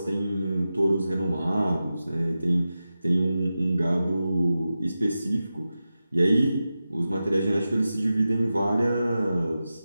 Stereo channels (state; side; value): inverted; both; correlation -0.93